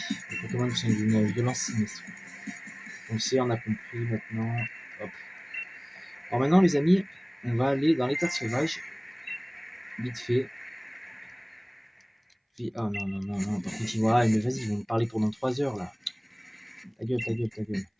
Les Pokémon sont d'une violence sinistre. On le sait, on a compris maintenant. Hop. Alors maintenant, les amis, on va aller dans les terres sauvages. Vite fait. Ah non, non, non, non, par contre, ouais, mais vas-y, ils vont me parler pendant 3 heures là. Ta gueule, ta gueule, ta gueule.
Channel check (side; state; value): both; identical; correlation 1.00